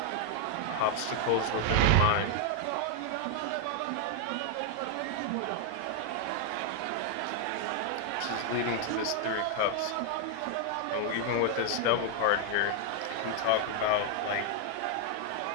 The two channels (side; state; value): both; different; correlation 0.00